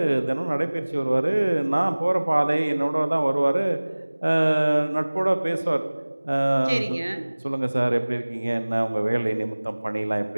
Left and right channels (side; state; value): both; inverted; correlation -1.00